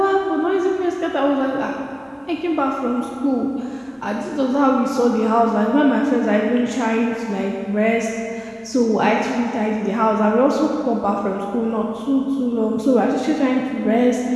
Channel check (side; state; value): both; identical; correlation 1.00